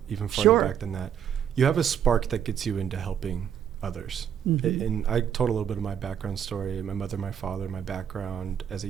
even farther back than that. You have a spark that gets you into helping others. And I told a little bit of my background story, my mother, my father, my background as a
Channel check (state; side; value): quieter; left; 8.9 dB